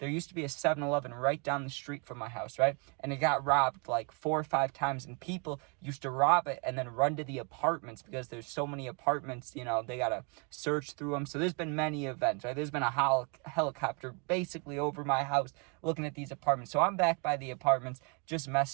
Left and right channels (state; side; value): quieter; left; 34.5 dB